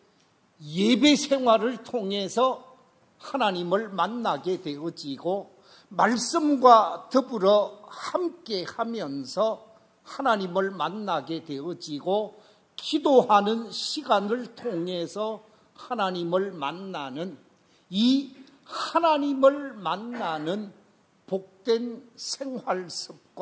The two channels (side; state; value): both; identical; correlation 1.00